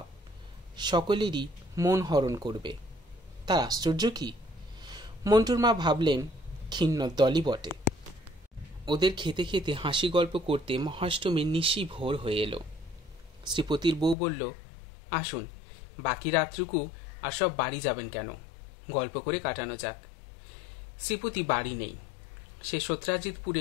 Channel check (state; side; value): drops out; right; at 14.2 s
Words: সকলেরই মন হরণ করবে। তার আশ্চর্য কি? মন্টুর মা ভাবলেন, কিন্নর দলই বটে। ওদের খেতে খেতে হাসি গল্প করতে মহাষ্টমীর নিশি ভোর হয়ে এলো। শ্রীপতির বউ বলল, আসুন, বাকি রাতটুকু আর সব বাড়ি যাবেন কেন, গল্প করে কাটানো যাক। শ্রীপতি বাড়ি নেই, সে